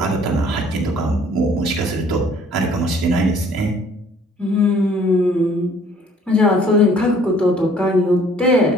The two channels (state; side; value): normal; both; correlation 0.58